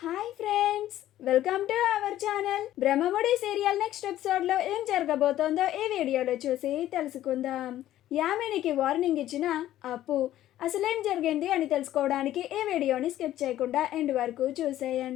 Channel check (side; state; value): right; quieter; 13.3 dB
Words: Hi friends, welcome to our channel. Brahmamudi serial next ఎపిసోడ్లో ఏం జరగబోతోందో ఈ వీడియోలో చూసి తెలుసుకుందాం. యామినికి వార్నింగ్ ఇచ్చిన అప్పు అసలేం జరిగింది అని తెలుసుకోవడానికి ఈ వీడియోని స్కిప్ చేయకుండా ఎండ్ వరకు